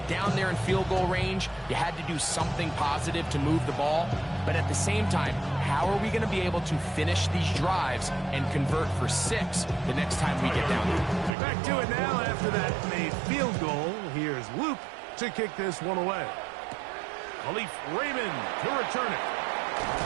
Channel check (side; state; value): left; drops out; at 11.3 s